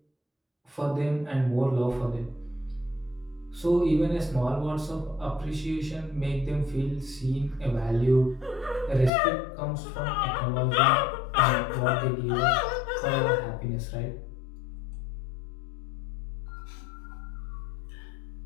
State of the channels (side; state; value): right; drops out; at 9.1 s